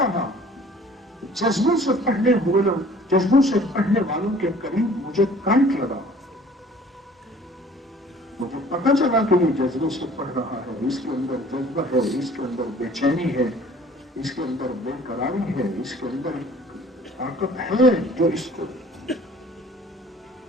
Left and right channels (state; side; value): normal; both; correlation 0.51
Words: جذبوں سے پڑھنے والوں کے قریب مجھے کرنٹ لگا، مجھے پتا چلا کہ یہ جذبے سے پڑھ رہا ہے، اس کے اندر جذبہ ہے، اس کے اندر بے چینی ہے، اس کے اندر بے قراری ہے، اس کے اندر طاقت ہے جو اس کو